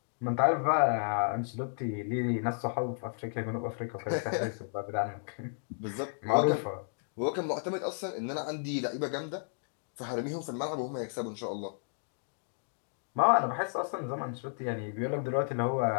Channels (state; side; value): silent; right; digital silence